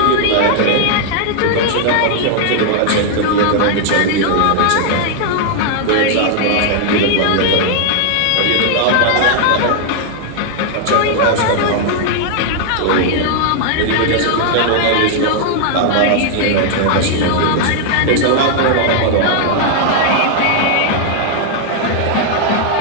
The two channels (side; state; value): both; different; correlation 0.00